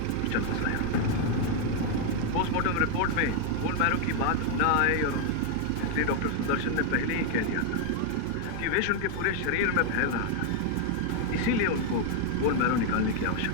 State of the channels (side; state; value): both; different; correlation 0.01